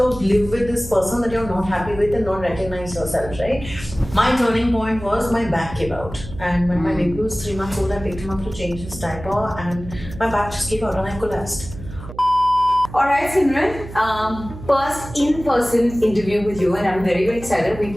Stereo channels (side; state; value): right; noise; hum, 13 dB below the sound